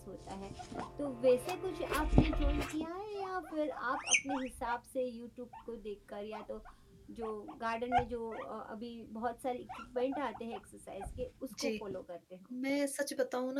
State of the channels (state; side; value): identical; both; correlation 1.00